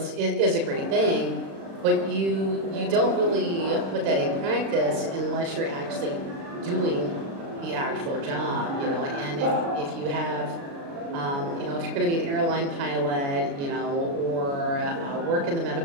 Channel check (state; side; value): late; left; 36 ms